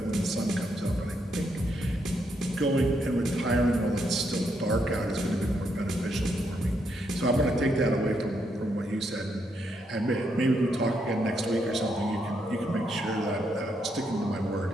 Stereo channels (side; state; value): both; normal; correlation 0.78